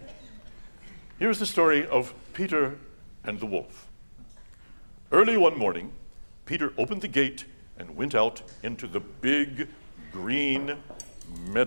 Here's the story of Peter and the wolf. Early one morning, Peter opened the gate and went out into the big green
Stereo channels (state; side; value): inverted; both; correlation -1.00